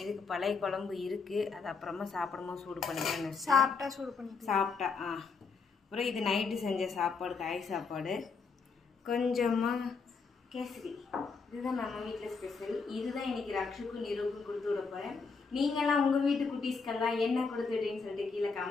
இதுக்கு பழைய குழம்பு இருக்குது, அது அப்புறமா சாப்பிடும்போது சூடு பண்ணிக்கிறேன்னு சாப்பிட்டா. அப்புறம் இது நைட்டு செஞ்ச சாப்பாடு, காய் சாப்பாடு, கொஞ்சமாக கேசரி. இதுதான் நம்ம வீட்டில் ஸ்பெஷல். இதுதான் இன்றைக்கி ரக்ஷுக்கும் நிருவுக்கும் கொடுத்து விட போகிறேன். நீங்களாம் உங்கள் வீட்டு குட்டீஸ்க்கெல்லாம் என்ன கொடுத்துட்டீங்கன்னு சொல்லிட்டு கீழே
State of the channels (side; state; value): right; quieter; 4.9 dB